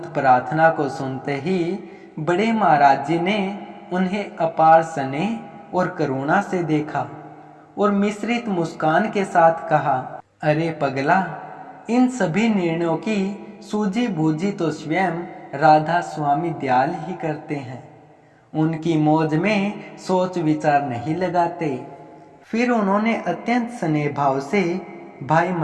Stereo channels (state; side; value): identical; both; correlation 1.00